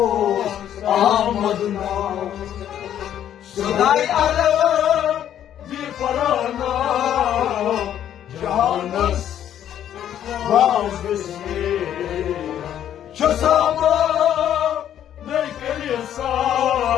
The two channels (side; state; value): right; quieter; 10.5 dB